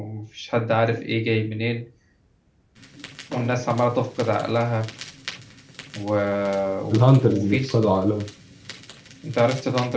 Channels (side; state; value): both; identical; correlation 1.00